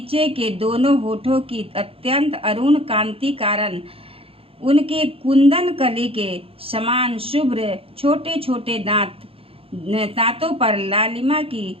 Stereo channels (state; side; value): late; left; 0.27 ms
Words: के दोनों होठों की अत्यंत अरुण कांति कारण उनके कुंदन कली के समान शुभ्र छोटे छोटे दांतों पर लालिमा की